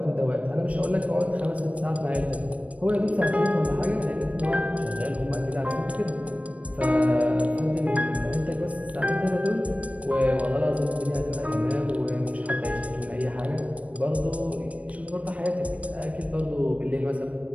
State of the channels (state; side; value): late; left; 0.066 ms